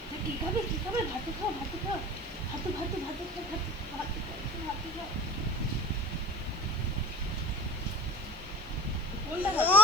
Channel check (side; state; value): left; noise; hiss, 27 dB below the sound